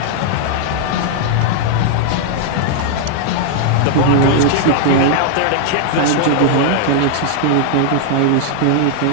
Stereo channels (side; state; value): both; different; correlation 0.00